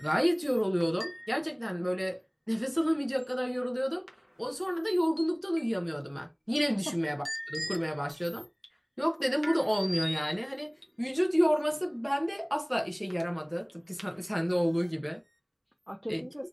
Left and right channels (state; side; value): identical; both; correlation 1.00